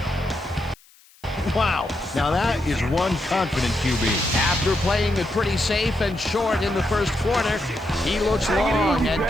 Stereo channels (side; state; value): left; noise; hiss, 28 dB below the sound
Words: Wow, now that is one confident QB. After playing it pretty safe and short in the first quarter, he looks long and